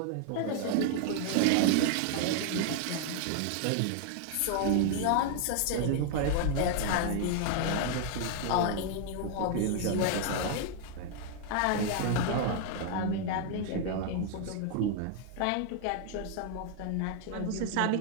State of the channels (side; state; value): both; different; correlation 0.00